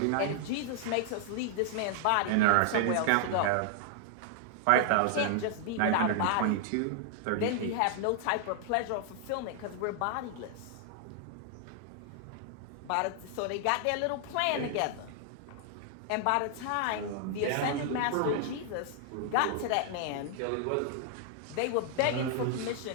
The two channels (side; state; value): both; different; correlation 0.00